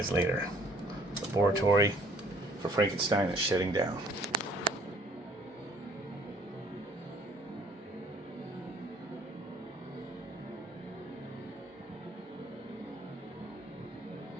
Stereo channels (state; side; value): normal; both; correlation 0.59